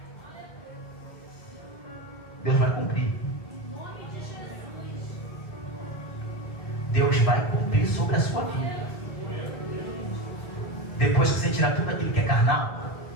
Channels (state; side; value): late; right; 2.0 ms